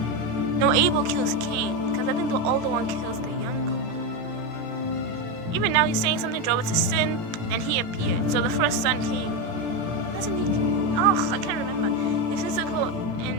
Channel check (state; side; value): late; left; 18 ms